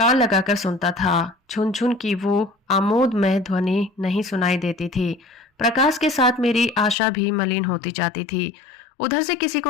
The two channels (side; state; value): right; drops out; at 7.0 s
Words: लगाकर सुनता था, झुनझुन की वो आमोदमय ध्वनि नहीं सुनाई देती थी। प्रकाश के साथ मेरी आशा भी मलिन होती जाती थी। उधर से किसी